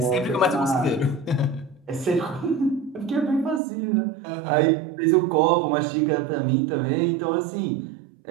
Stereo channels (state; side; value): drops out; left; at 3.6 s